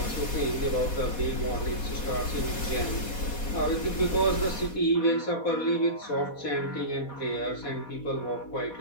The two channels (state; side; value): late; right; 4.2 ms